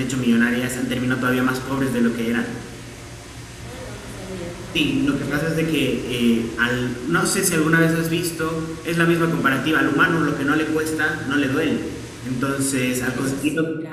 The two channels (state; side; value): identical; both; correlation 1.00